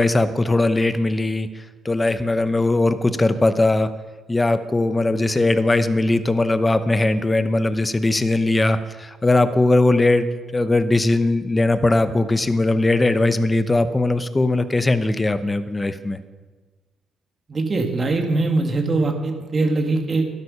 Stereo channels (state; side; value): normal; both; correlation 0.94